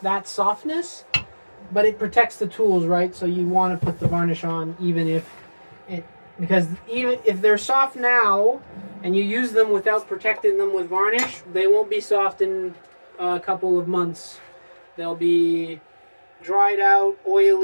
softness, but it protects the tools, right? So you want to put the varnish on even if because even if they're soft now and you use them without protecting them with varnish, they won't be soft in a couple of months. They'll be dried out,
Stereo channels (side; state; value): both; inverted; correlation -1.00